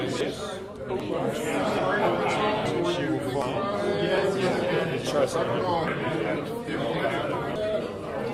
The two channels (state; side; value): identical; both; correlation 1.00